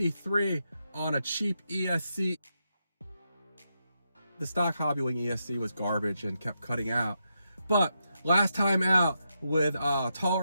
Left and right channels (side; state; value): both; inverted; correlation -0.84